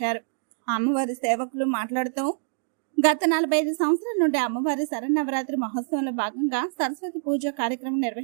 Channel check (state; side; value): silent; left; digital silence